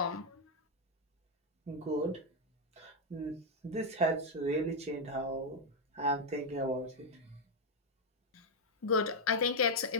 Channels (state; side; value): normal; both; correlation 0.01